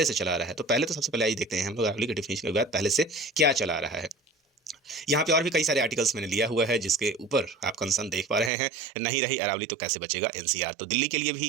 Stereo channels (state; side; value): drops out; left; at 8.5 s